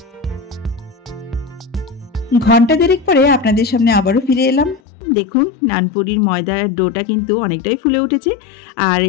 ঘন্টা 1.5 পরে আপনাদের সামনে আবারও ফিরে এলাম। দেখুন, নানপুরির ময়দার ডোটা কিন্তু অনেকটাই ফুলে উঠেছে আর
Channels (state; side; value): drops out; right; at 4.8 s